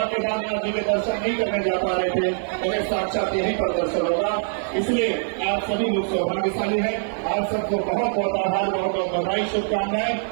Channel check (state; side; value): silent; left; 63 dB below the other